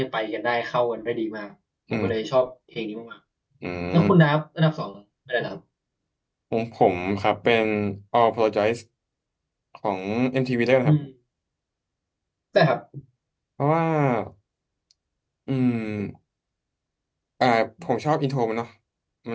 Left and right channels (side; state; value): both; identical; correlation 1.00